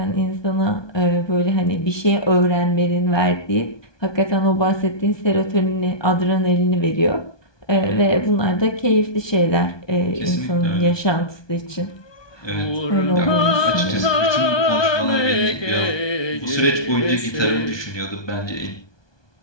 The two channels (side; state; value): right; late; 1.2 ms